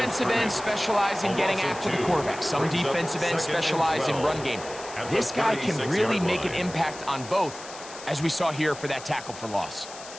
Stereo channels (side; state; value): left; noise; hiss, 15 dB below the sound